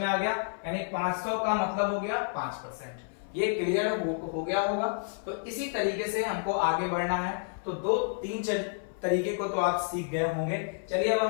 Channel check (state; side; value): silent; right; 57 dB below the other